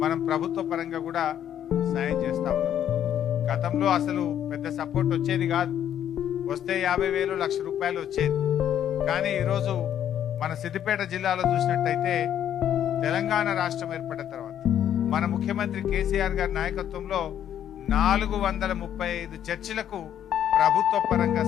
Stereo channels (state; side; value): quieter; right; 10.2 dB